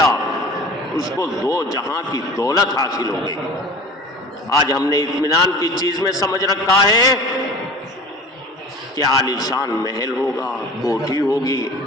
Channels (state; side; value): normal; both; correlation 0.40